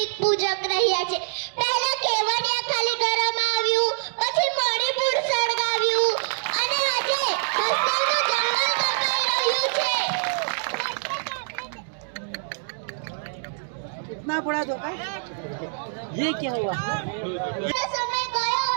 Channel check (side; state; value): left; silent; digital silence